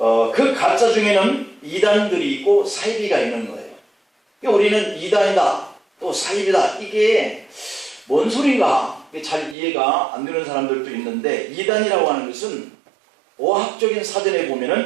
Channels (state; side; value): drops out; left; at 9.6 s